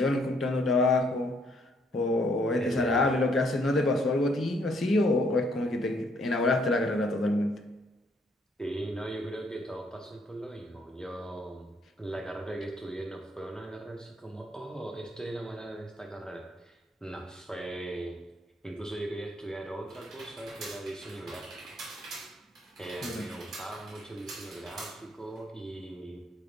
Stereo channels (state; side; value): normal; both; correlation 0.68